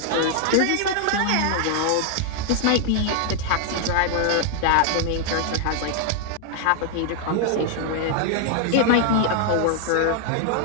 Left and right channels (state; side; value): different; both; correlation 0.00